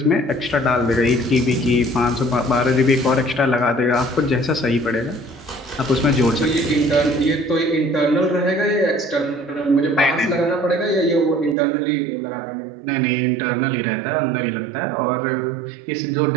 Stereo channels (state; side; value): drops out; left; at 11.6 s